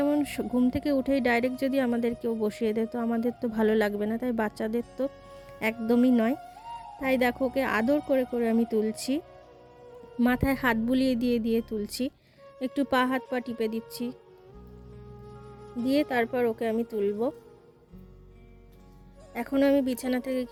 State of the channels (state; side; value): identical; both; correlation 1.00